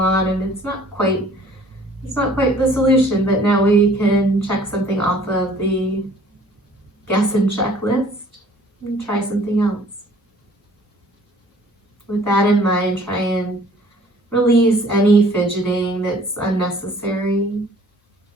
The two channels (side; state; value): both; normal; correlation 0.54